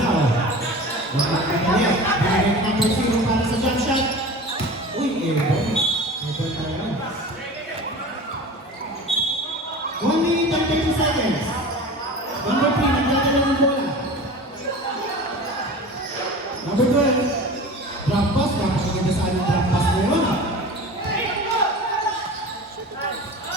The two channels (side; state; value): both; normal; correlation 0.35